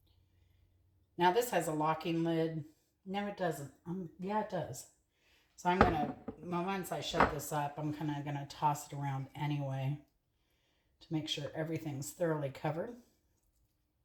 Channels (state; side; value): identical; both; correlation 1.00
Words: Now this has a locking lid. No, it doesn't. Yeah, it does. So I'm going to, once I shut this up, I'm kind of going to toss it around anyway to make sure everything's thoroughly covered.